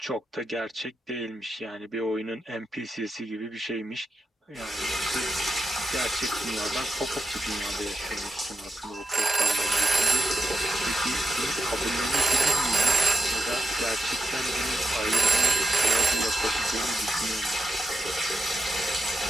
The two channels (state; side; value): normal; both; correlation 0.86